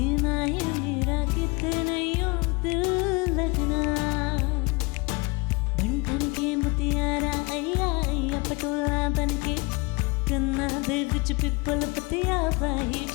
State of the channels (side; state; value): right; quieter; 27.6 dB